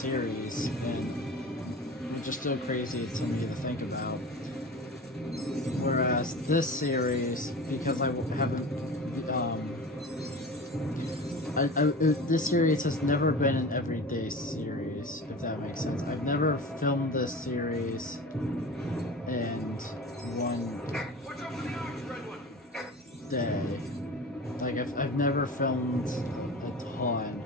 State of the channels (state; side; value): normal; both; correlation 0.34